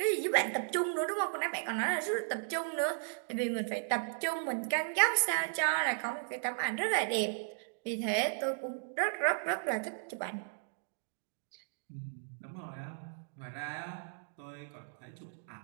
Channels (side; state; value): left; silent; digital silence